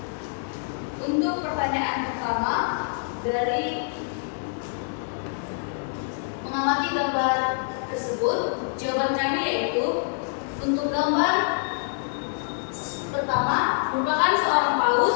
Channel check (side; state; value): right; silent; digital silence